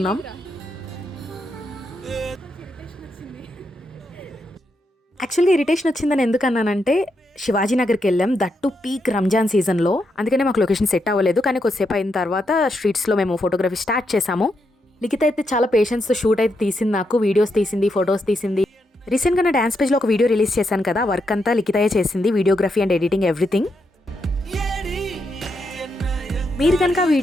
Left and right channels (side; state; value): both; normal; correlation 0.82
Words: యాక్చువల్గా ఇరిటేషన్ వచ్చిందని ఎందుకన్నానంటే శివాజీనగర్కి వెళ్ళాం, దట్టు పీక్ రంజాన్ సీజన్లో. అందుకనే మాకు లొకేషన్ సెట్ అవ్వలేదు. కానీ కొద్దిసేపు అయిన తర్వాత స్ట్రీట్స్లో మేము ఫోటోగ్రఫీ స్టార్ట్ చేసాము. లిఖిత అయితే చాలా పేషెన్స్తో షూట్ అయితే తీసింది, నాకు వీడియోస్ తీసింది, ఫొటోస్ తీసింది. రీసెంట్గా నా డ్యాన్స్ పేజ్లో ఒక వీడియో రిలీజ్ చేశాను కదా, వర్క్ అంతా లిఖితయే చేసింది, వీడియోగ్రఫీ అండ్ ఎడిటింగ్ ఎవ్రీథింగ్. మీరు కనుక ఆ